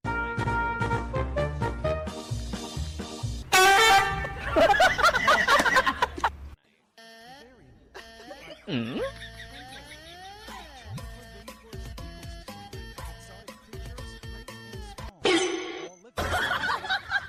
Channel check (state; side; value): identical; both; correlation 1.00